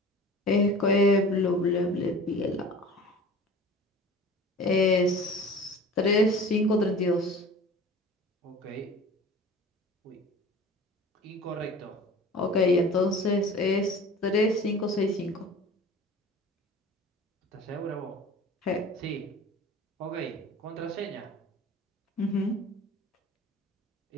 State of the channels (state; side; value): normal; both; correlation 0.41